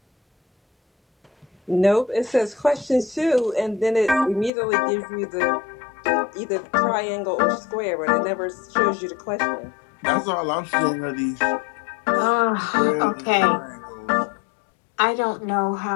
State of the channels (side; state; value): right; drops out; at 4.5 s